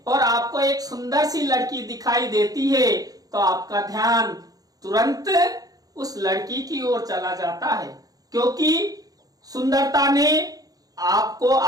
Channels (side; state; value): left; late; 0.18 ms